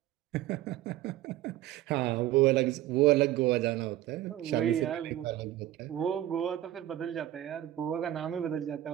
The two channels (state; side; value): quieter; left; 13.7 dB